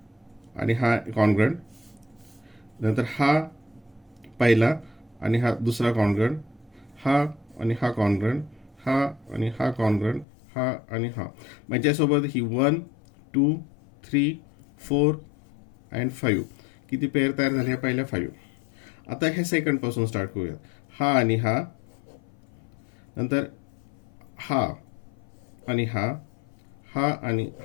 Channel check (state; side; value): drops out; right; at 10.2 s